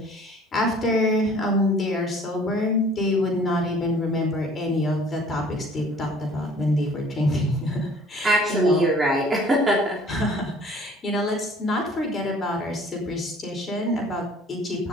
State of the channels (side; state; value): both; normal; correlation 0.53